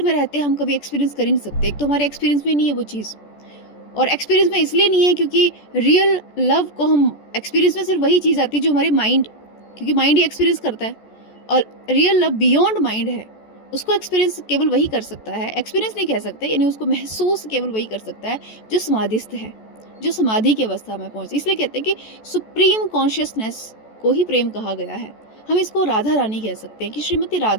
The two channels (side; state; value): right; late; 14 ms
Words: में रहते हम कभी एक्सपीरियंस कर ही नहीं सकते। एक तो हमारे एक्सपीरियंस में नहीं है वो चीज़, और एक्सपीरियंस में इसलिए नहीं है क्योंकि रियल लव को हम एक्सपीरियंस में सिर्फ वही चीज़ आती है जो हमारे माइंड, क्योंकि माइंड ही एक्सपीरियंस करता है, और रियल लव बियॉन्ड माइंड है, उसको एक्सपीरियंस केवल वही कर सकता है, एक्सपीरियंस नहीं कह सकते, यानी उसको महसूस केवल वही कर सकता है जो समाधिस्थ है, जो समाधि की अवस्था में पहुँचे। इसलिए कहते हैं कि सुप्रीम कॉन्शियसनेस को ही प्रेम कहा गया है। हम इसको राधा रानी कह सकते हैं कि श्रीमती